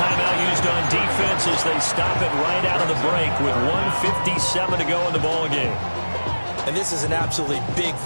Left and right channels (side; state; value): both; inverted; correlation -1.00